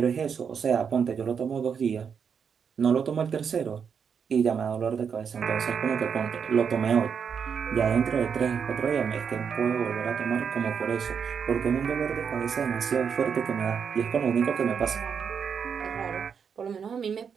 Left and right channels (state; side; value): quieter; left; 6.8 dB